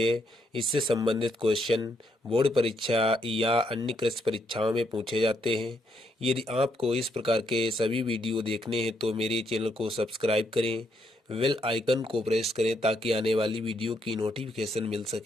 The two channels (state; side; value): normal; both; correlation 0.75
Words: इससे संबंधित क्वेश्चन बोर्ड परीक्षा या अन्य कृषि परीक्षाओं में पूछे जाते हैं। यदि आपको इस प्रकार के सभी वीडियो देखने हैं तो मेरे चैनल को सब्सक्राइब करें, बेल आइकन को प्रेस करें ताकि आने वाली वीडियो की नोटिफिकेशन मिल